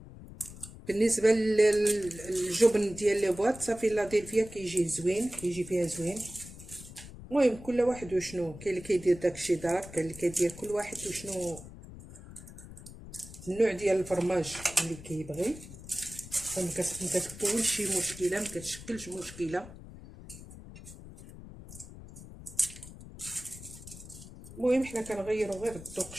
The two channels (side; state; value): left; noise; rumble, 15 dB below the sound